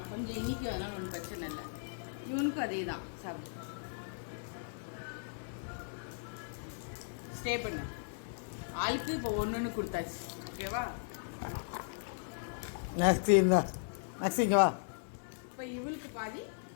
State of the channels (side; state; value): right; silent; digital silence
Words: கொஞ்சம் இனிக்கு, அதனால ஒன்றும் பிரச்சனை இல்லை. இவனுக்கும் அதே தான். சாப்பிட்டு ஸ்டே பண்ணு. ஆளுக்கு இப்போ ஒன்று கொடுத்தாச்சு. ஓகேவா? நெக்ஸ்ட் இருந்தா நெக்ஸ்ட் இங்கே வா. இப்போ இவளுக்கு பாதி,